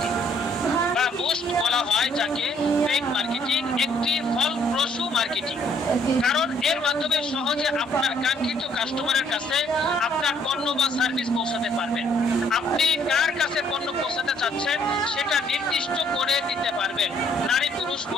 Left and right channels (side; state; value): both; normal; correlation 0.65